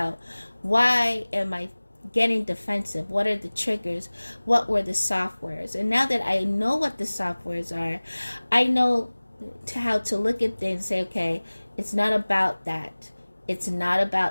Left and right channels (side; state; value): both; inverted; correlation -1.00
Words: why am I getting defensive? What are the triggers? What were the softwares? And now that I know what the softwares are, I know how to look at things and say, okay, it's not about that. It's not